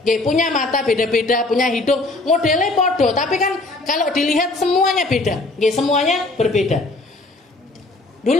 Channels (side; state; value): right; quieter; 3.0 dB